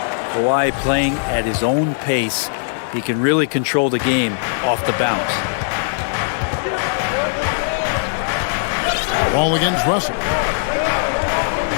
Kawhi playing at his own pace. He can really control the game off the bounce. Ball against Russell.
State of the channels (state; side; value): silent; right; digital silence